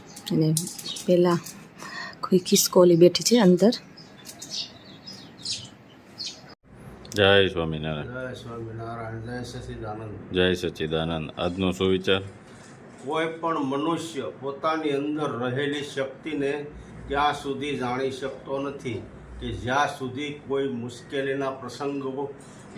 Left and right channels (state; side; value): identical; both; correlation 1.00